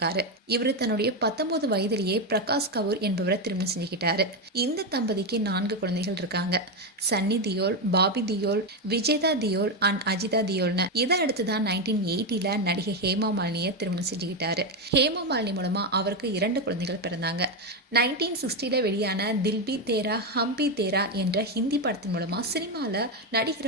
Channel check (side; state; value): both; normal; correlation 0.09